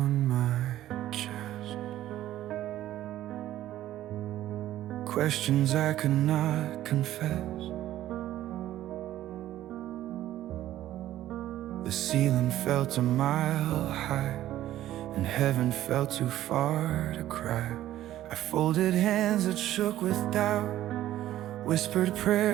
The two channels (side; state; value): left; quieter; 13.5 dB